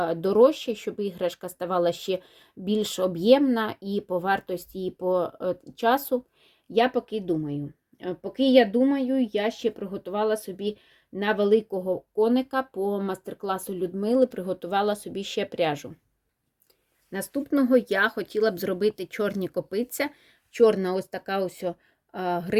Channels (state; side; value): identical; both; correlation 1.00